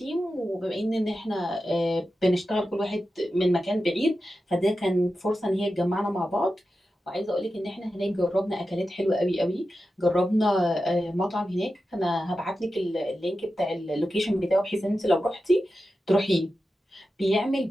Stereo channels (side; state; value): both; normal; correlation 0.91